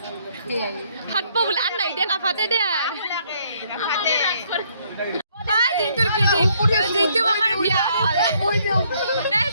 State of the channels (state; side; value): inverted; both; correlation -0.68